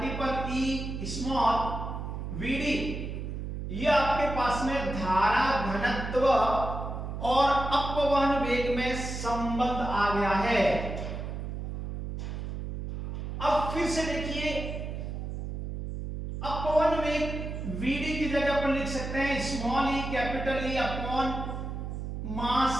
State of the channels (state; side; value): noise; right; hum, 5 dB below the sound